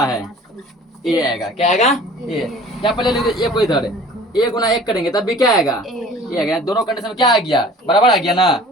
है, ए आएगा। क्या आएगा, ए। या पहले लिख ए को इधर, ए गुना 1 करेंगे तब भी क्या आएगा, ए आएगा। दोनों कंडीशन में क्या आ गया, बराबर आ गया ना।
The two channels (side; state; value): both; normal; correlation 0.47